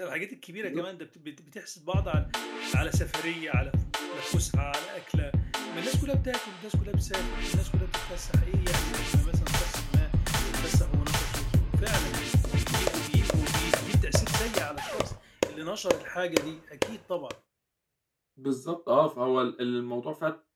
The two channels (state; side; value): identical; both; correlation 1.00